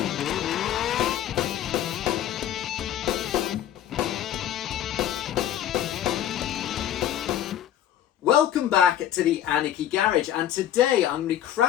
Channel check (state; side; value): quieter; right; 11.2 dB